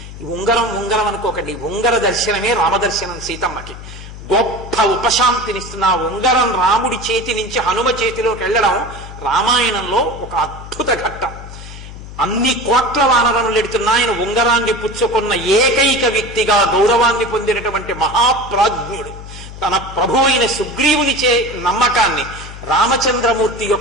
ఉంగరం అనుకోకండి, ఉంగర దర్శనమే రామదర్శనం సీతమ్మకి. గొప్ప ఉపశాంతినిస్తున్న ఆ ఉంగరం రాముడి చేతి నుంచి హనుమ చేతిలోకి వెళ్ళడం రామాయణంలో ఒక అద్భుత ఘట్టం. అన్ని కోట్ల వానరములు ఎడుతున్నా ఆయన ఉంగరాన్ని పుచ్చుకున్న ఏకైక వ్యక్తిగా గౌరవాన్ని పొందినటువంటి మహాప్రాజ్ఞుడు. తన ప్రభు అయిన సుగ్రీవుని నమ్మకాన్ని, రామచంద్రమూర్తి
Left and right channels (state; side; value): noise; left; hum, 13 dB below the sound